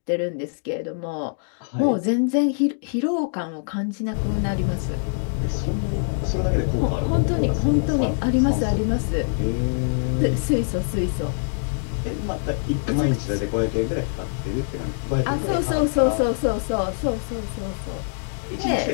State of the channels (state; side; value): silent; right; digital silence